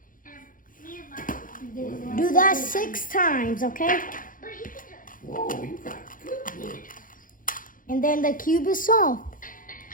Do that 6 times, okay? And then the cube is solved.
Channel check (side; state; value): right; late; 0.40 ms